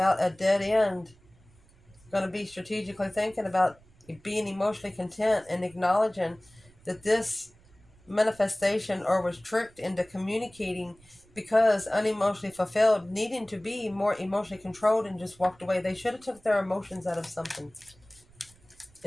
a dead end. Going to be strategically thinking about being emotionally content and acknowledging that this manifestation or was tricked into communicating because unemotionally fulfilled, needing to be more emotionally controlled, and just walked away. They should have took their emotions out of something.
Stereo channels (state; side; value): noise; right; rumble, 28 dB below the sound